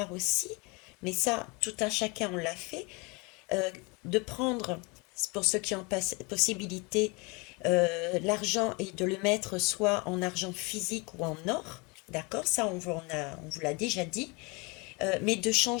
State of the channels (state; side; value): quieter; right; 28.8 dB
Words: aussi, mais ça, tout un chacun, on l'a fait, de prendre, pour ceux qui ont possibilité, l'argent et de le mettre soit en argent physique ou en or, d'accord, ça on vous l'a déjà dit, mais de